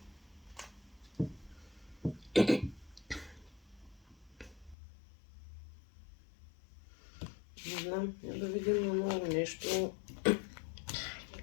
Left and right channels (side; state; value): right; drops out; at 4.8 s